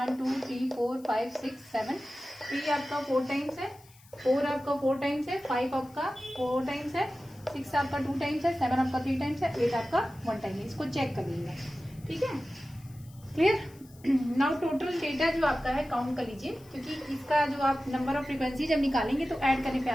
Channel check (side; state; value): left; noise; hiss, 26 dB below the sound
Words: 2 3 4 5 6 7, 3 आपका 4 टाइम्स है, 4 आपका 4 टाइम्स है, 5 आपका 4 टाइम्स है, 6 आपका 2 टाइम्स है, 7 आपका 3 टाइम्स है, 8 आपका 1 टाइम है। इसको चेक कर लीजिएगा, ठीक है, क्लियर। नाउ टोटल डेटा जो आपका है काउंट कर लीजिए, क्योंकि इसका जो आप नंबर ऑफ फ्रीक्वेंसी जब निकालेंगे तो ऐड करने पे